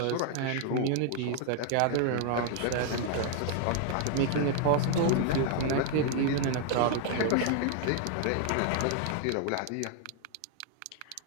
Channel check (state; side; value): different; both; correlation 0.00